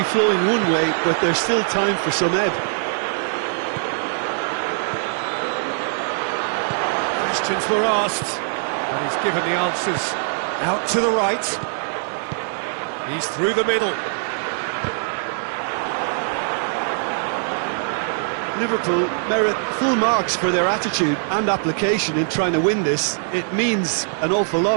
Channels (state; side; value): silent; left; digital silence